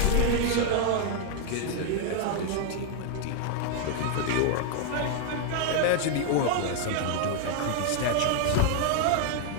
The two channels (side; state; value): both; different; correlation 0.00